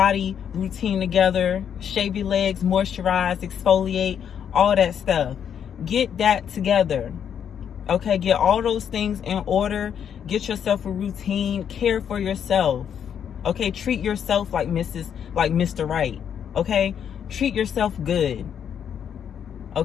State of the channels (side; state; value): right; quieter; 8.4 dB